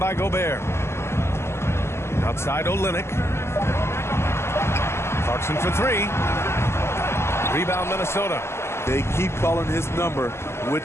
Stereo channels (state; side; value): late; right; 0.12 ms